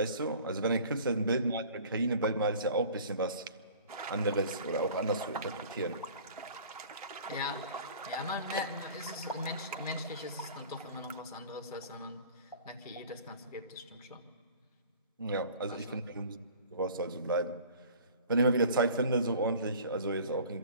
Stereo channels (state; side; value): inverted; both; correlation -0.45